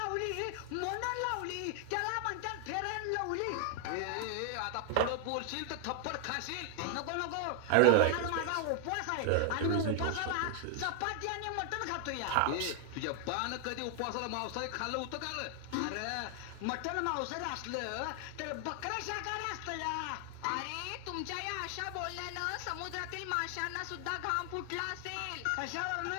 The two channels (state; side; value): different; both; correlation 0.00